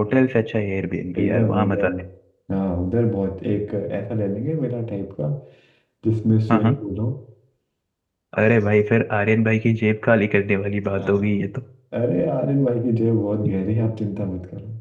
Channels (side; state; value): both; identical; correlation 1.00